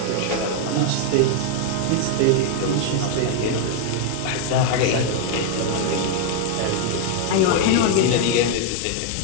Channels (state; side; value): different; both; correlation 0.00